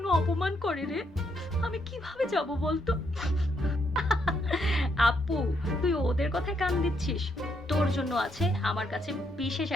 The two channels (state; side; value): normal; both; correlation 0.76